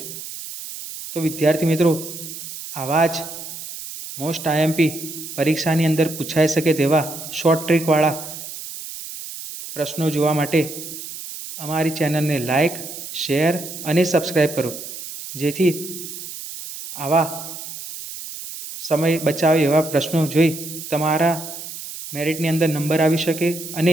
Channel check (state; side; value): noise; right; hiss, 10 dB below the sound